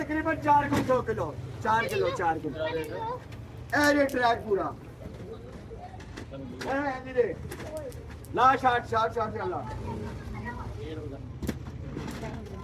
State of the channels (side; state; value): both; identical; correlation 1.00